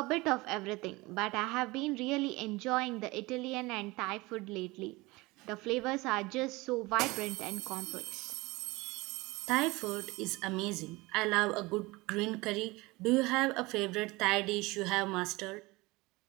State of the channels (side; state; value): left; quieter; 22.5 dB